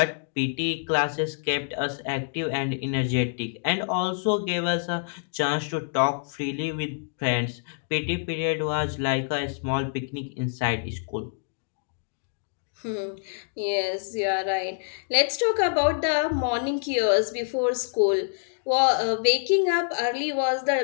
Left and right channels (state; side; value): silent; right; digital silence